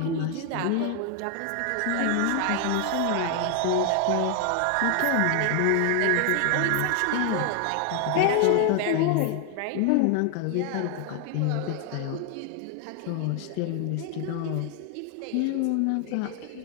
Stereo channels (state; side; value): different; both; correlation 0.00